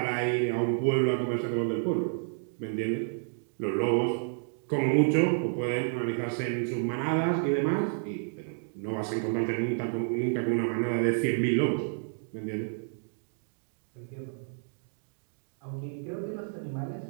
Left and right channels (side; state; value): left; silent; digital silence